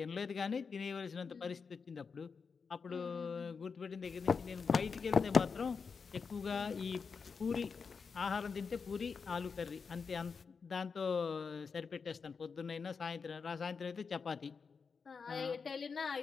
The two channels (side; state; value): right; quieter; 5.4 dB